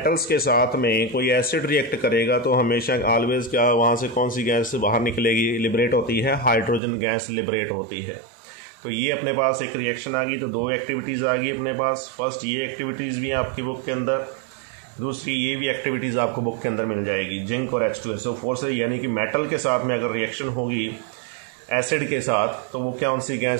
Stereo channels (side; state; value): left; drops out; at 6.8 s